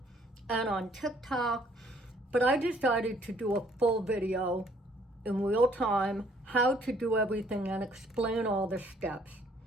and on TikTok, but I decided to do a full video in real time, how to do everything and explain all the steps.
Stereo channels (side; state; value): both; normal; correlation 0.62